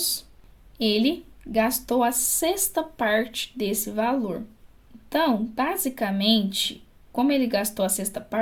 ele gastou a sexta parte desse valor. Então, basicamente, como ele gastou a sexta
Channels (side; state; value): both; identical; correlation 1.00